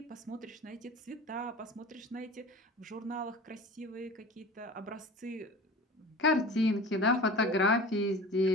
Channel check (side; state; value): both; normal; correlation 0.38